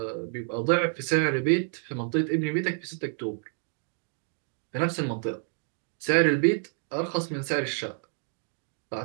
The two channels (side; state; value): left; silent; 59 dB below the other